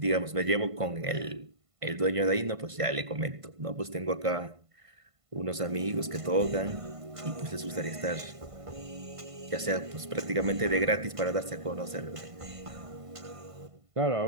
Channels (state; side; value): late; left; 1.5 ms